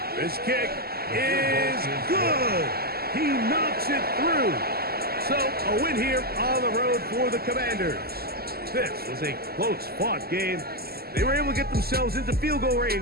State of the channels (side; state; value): left; late; 0.45 ms